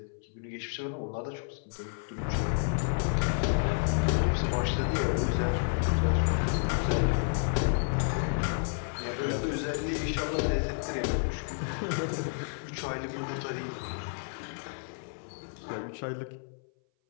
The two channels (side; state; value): right; silent; 57 dB below the other